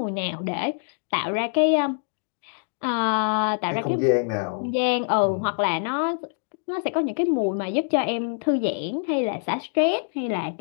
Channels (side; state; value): right; silent; digital silence